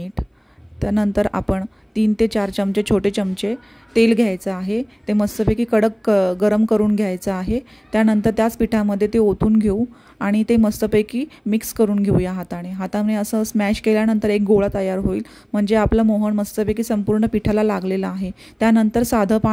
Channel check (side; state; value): both; identical; correlation 1.00